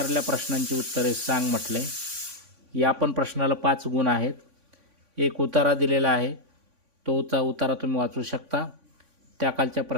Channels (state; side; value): late; left; 3.5 ms